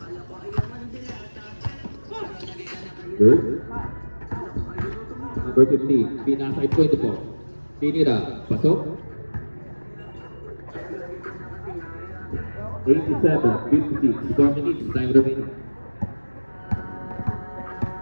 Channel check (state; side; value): inverted; both; correlation -1.00